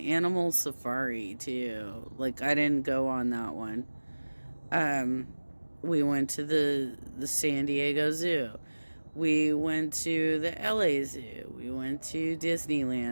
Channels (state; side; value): inverted; both; correlation -1.00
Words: animal safari too. Like, I didn't go on that one. We went to the San Diego Zoo. We went to the LA Zoo. We went to